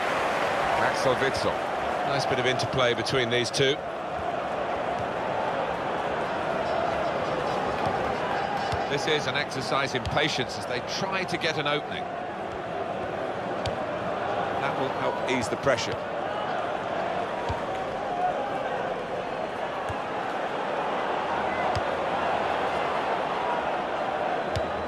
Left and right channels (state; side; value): identical; both; correlation 1.00